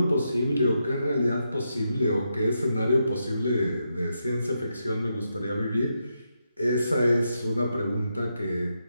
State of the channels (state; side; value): inverted; both; correlation -0.84